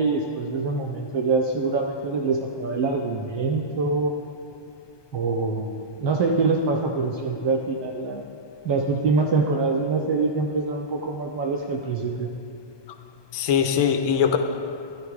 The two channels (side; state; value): right; late; 1.2 ms